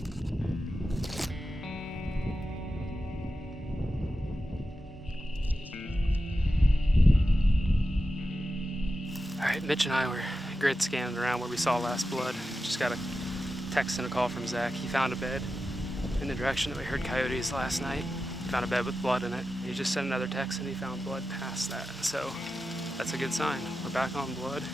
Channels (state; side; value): normal; both; correlation 0.91